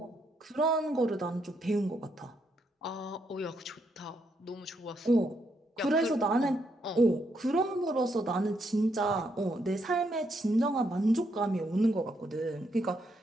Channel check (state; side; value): normal; both; correlation 0.77